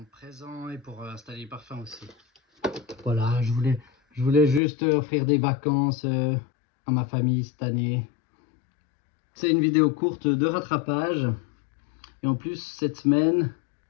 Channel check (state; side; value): drops out; right; at 4.6 s